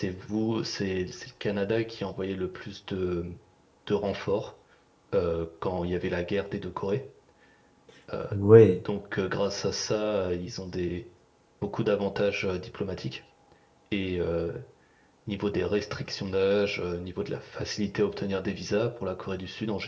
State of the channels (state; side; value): identical; both; correlation 1.00